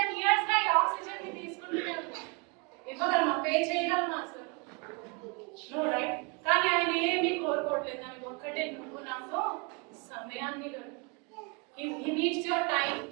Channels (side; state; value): left; quieter; 31.0 dB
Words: ఇయర్స్ గా ఈ ఆక్సిజన్ ని తీసుకుంటూనే ఉంటాం. ఇవ్వగలమా, పే చేయగలమా అసలు? No, right. కానీ ఆయన ఏమీ కోరుకోవట్లేదు, దానికి ఒక్కటే, నువ్వు నాతో సమయాన్ని హీ నీడ్స్ యువర్ టైం.